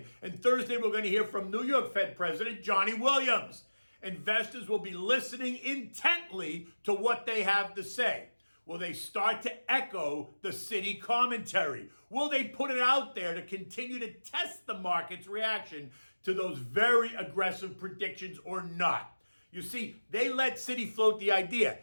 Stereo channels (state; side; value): inverted; both; correlation -1.00